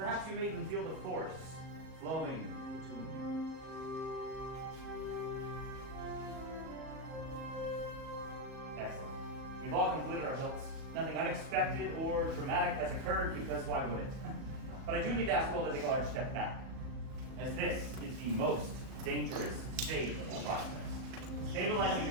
you may even feel the force flowing between you. Excellent. We've all completed our hilts. Nothing unexpected or dramatic has occurred, because why would it? But I do need to ask you all to take a large step back, as this is the most dangerous stage of the process. Stabilizing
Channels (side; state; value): left; late; 37 ms